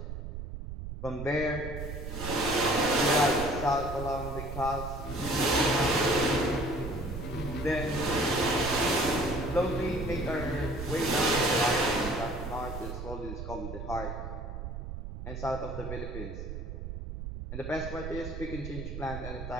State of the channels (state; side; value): noise; right; rumble, 7 dB below the sound